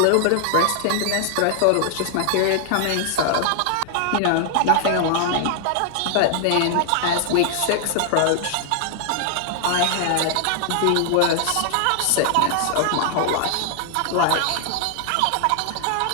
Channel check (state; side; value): different; both; correlation 0.00